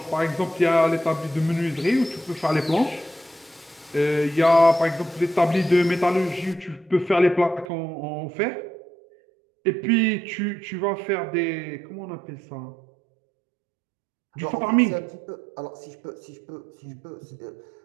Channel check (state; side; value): drops out; left; at 7.7 s